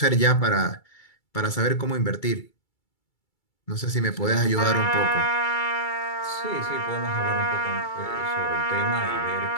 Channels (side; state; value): right; late; 2.3 ms